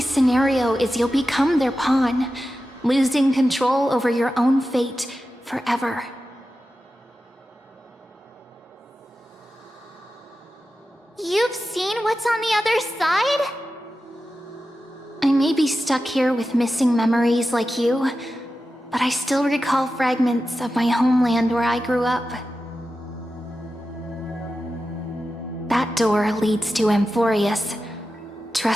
scenario is you'll become their pawn, losing control over your own fate forever. You've seen what's on the other side? I may be stuck here with missing memories like you, but I still recall fragments of my homeland where I grew up. That door leads to Amphorius.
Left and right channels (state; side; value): normal; both; correlation 0.92